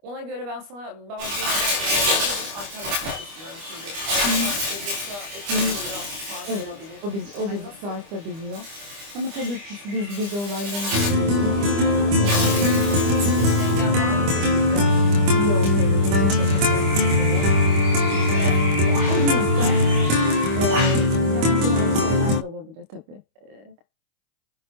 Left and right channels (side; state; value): left; late; 25 ms